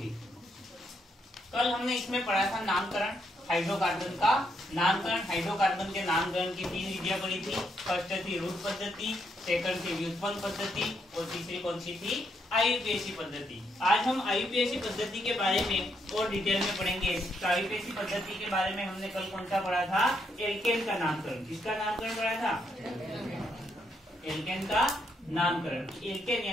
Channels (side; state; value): both; normal; correlation 0.76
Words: कल हमने इसमें पढ़ा था नामकरण हाइड्रोकार्बन का। नामकरण हाइड्रोकार्बन के नामकरण की 3 विधियां पढ़ी थी। फर्स्ट थी रूट पद्धति, सेकंड थी व्युत्पन्न पद्धति और तीसरी कौन सी थी? आईयूपीएसी पद्धति। आज हम आईयूपीएसी पद्धति के बारे में और डिटेल में पढ़ेंगे। तो आईयूपीएसी पद्धति के बारे में हमने कल कौन सा पढ़ा था? एल्केन का नामकरण। किसका नामकरण पढ़ा था? एल्केन का नामकरण। एल्केन